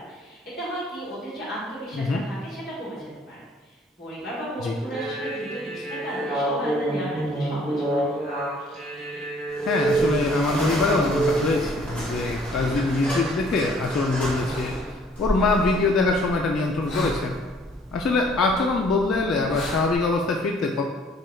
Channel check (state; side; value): normal; both; correlation 0.59